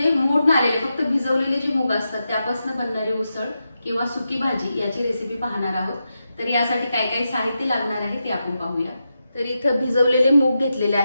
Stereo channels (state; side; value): inverted; both; correlation -0.88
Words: मोड आलेले फक्त भिजवलेले जे मूग असतात त्यापासून बनणारी उसळ किंवा सुकी भाजी याची रेसिपी पाहणार आहोत। तर यासाठी काय काय साहित्य लागणार आहे ते आपण पाहूया। तर इथे भिजवलेले मूग घेतलेले